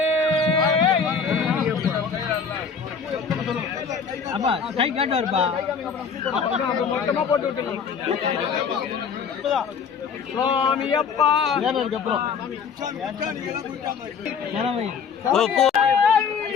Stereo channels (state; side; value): quieter; right; 6.1 dB